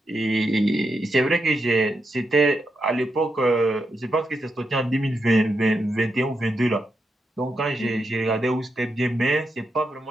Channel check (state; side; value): normal; both; correlation 0.84